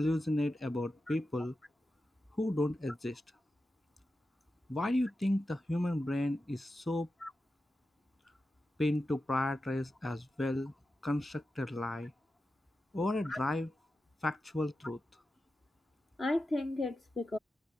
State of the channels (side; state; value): both; normal; correlation 0.91